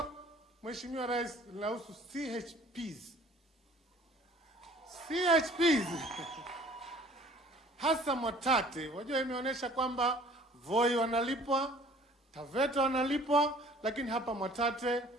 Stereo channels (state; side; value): normal; both; correlation 0.52